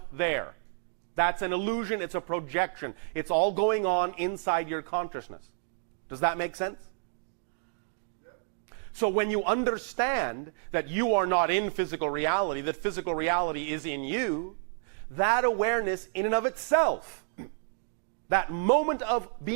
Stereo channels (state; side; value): silent; left; digital silence